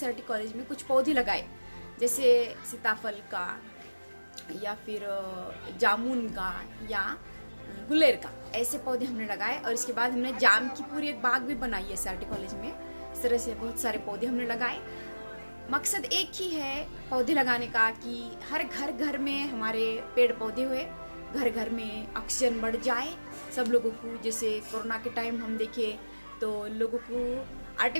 कॉलेज में कुछ पौधे लगाए, जैसे सीताफल का या फिर जामुन का या गुलेर का, ऐसे पौधे हमने लगाए। और इसके बाद हमने जाम की पूरी एक बाग भी बनाई है SRT कॉलेज में। इस तरह से बहुत सारे पौधे हमने लगाए। मकसद एक ही है पौधे लगाने का कि हर घर में हमारे पेड़ पौधे हुए, घर में ऑक्सीजन बढ़ जाए सब लोगों को। जैसे कोरोना के टाइम हम देखे तो लोगों को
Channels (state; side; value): inverted; both; correlation -1.00